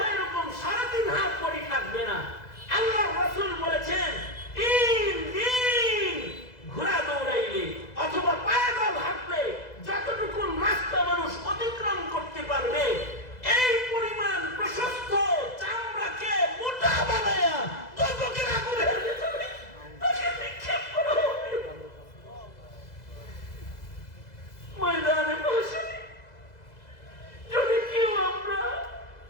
এরকম 3.5 হাত পরি থাকবে না। আল্লাহ রাসূল বলেছেন, 3 দিন ঘোড়া দৌড়াইলে অথবা পায়দল হাঁটলে যতটুকু রাস্তা মানুষ অতিক্রম করতে পারবে, এই পরিমাণ প্রশস্ত চামড়াকে মোটা বানায়া দোজখের আগুনের ভিতরে তাকে নিক্ষেপ করা হবে। ময়দানে মাহশারে যদি কেউ আমরা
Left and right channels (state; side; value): late; right; 2.0 ms